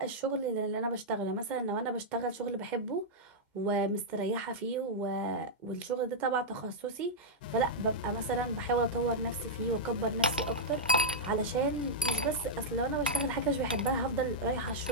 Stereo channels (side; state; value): both; normal; correlation -0.06